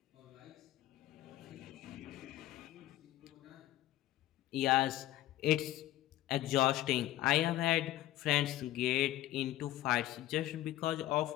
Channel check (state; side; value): quieter; right; 14.7 dB